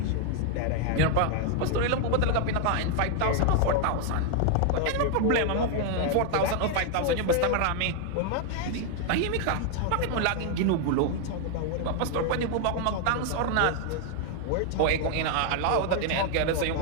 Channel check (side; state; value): both; different; correlation 0.00